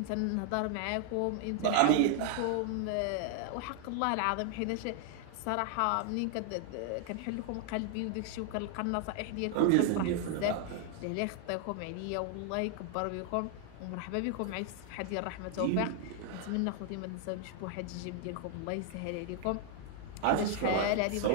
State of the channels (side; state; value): both; different; correlation 0.00